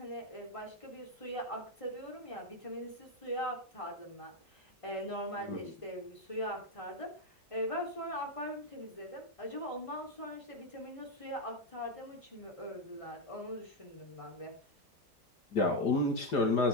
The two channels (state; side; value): normal; both; correlation 0.07